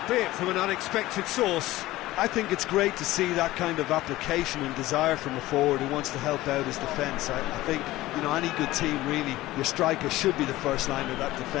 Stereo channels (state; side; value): quieter; right; 17.1 dB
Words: from an unexpected source. I think it's great to see that kind of application and desire from a forward who wants to help out his defence. I think, you know, any good team, really, your striker should be the first line of that